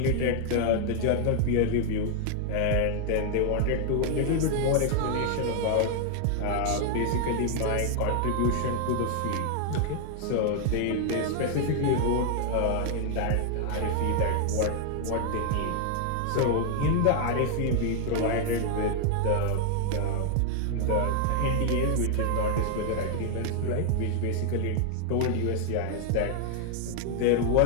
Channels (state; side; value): different; both; correlation 0.00